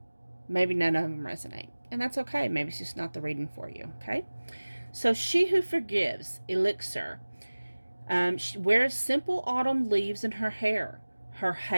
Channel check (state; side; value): inverted; both; correlation -1.00